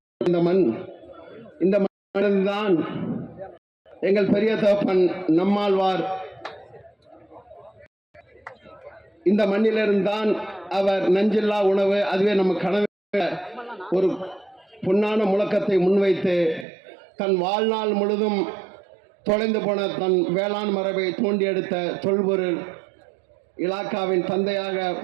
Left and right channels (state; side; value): drops out; left; at 16.7 s